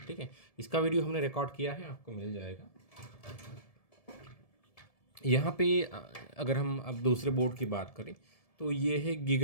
ठीक है। इसका वीडियो हमने रिकॉर्ड किया है, आपको मिल जाएगा। यहाँ पे अगर हम अब दूसरे बोर्ड की बात करें तो ये है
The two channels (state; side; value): late; right; 1.7 ms